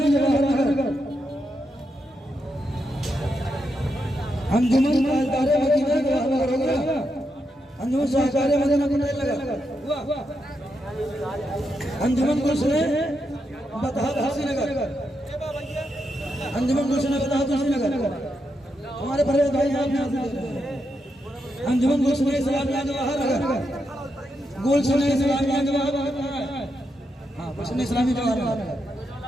जवाहर नगर, अंजुमन ताजदार मदीना जवाहर नगर हो गया। अंजुमन शाहकार मदीना पटेल नगर, अंजुमन गुलशन बतहात हसीनगर, अंजुमन गुलशन बतहात हसीनगर हमारे परवेज भाई हैं। अंजुमन गुलशन इस्लामिया जवाहर नगर, गुलशन इस्लामिया जवाहर नगर, हाँ गुलशन इस्लामिया जवाहर नगर,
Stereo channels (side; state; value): both; normal; correlation 0.83